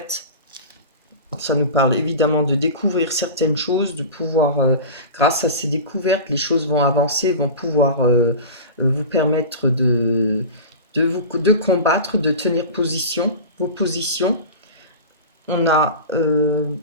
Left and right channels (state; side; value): inverted; both; correlation -0.31